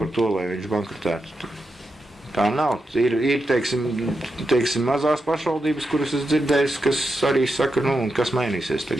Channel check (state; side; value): normal; both; correlation 0.87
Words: bankrotētu. Tā nav. Ir mazās pašvaldības, kuras es dzirdēju, kas arī saka, kas mainīsies